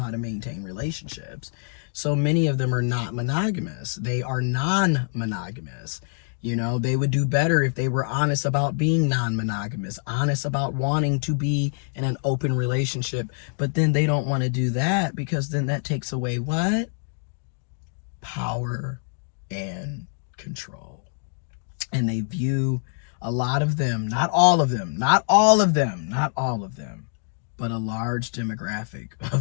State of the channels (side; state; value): right; silent; digital silence